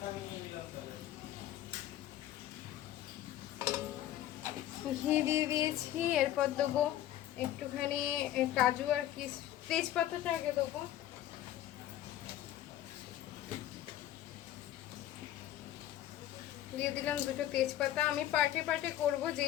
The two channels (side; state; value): right; quieter; 12.7 dB